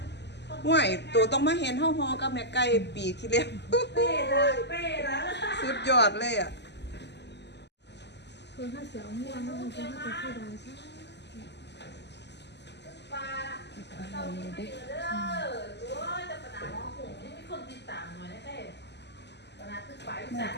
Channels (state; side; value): late; right; 0.50 ms